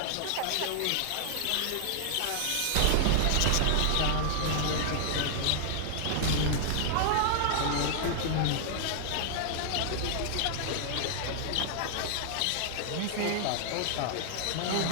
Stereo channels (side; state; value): both; different; correlation -0.01